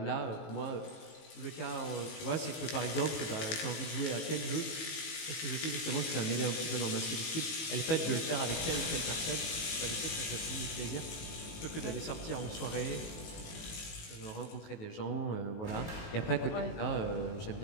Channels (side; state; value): right; late; 19 ms